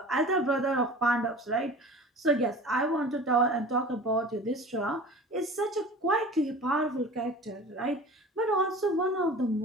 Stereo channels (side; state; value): both; normal; correlation 0.39